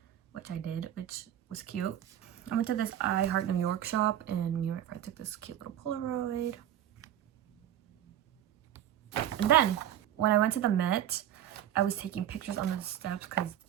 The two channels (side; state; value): left; quieter; 11.3 dB